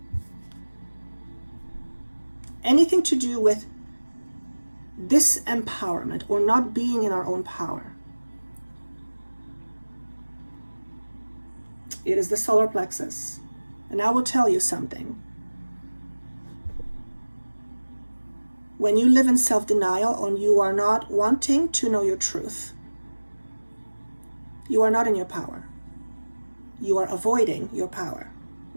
Anything to do with disempowerment or not being in our own power. It is the solar plexus. And I will tell you something. When you live in self-denial and you are not wanting to know your truth, you are not in your power. You are avoiding your power.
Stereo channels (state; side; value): inverted; both; correlation -1.00